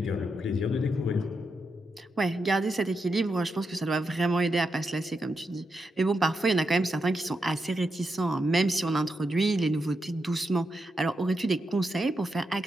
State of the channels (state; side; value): normal; both; correlation 0.85